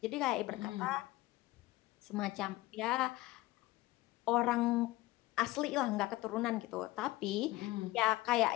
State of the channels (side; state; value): right; quieter; 18.6 dB